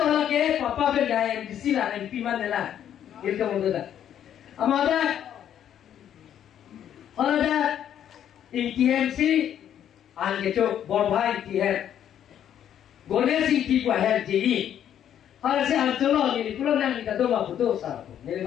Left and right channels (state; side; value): quieter; right; 10.0 dB